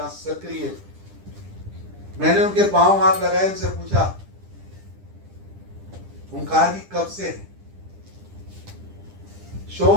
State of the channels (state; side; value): late; left; 10 ms